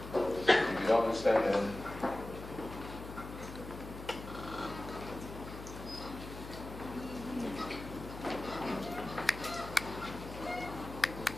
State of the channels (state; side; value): noise; left; hum, 11 dB below the sound